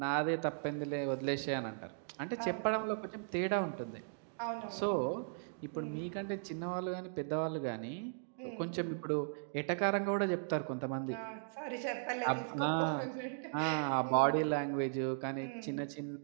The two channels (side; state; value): left; silent; digital silence